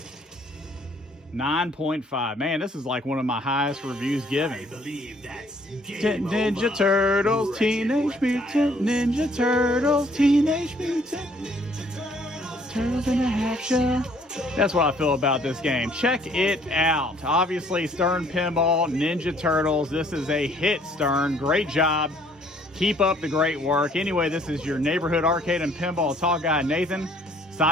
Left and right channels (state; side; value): normal; both; correlation 0.61